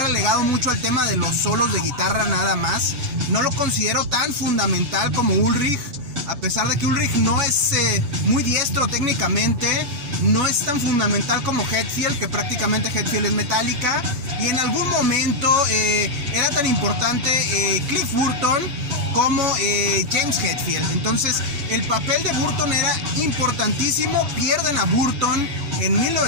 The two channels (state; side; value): late; left; 7.1 ms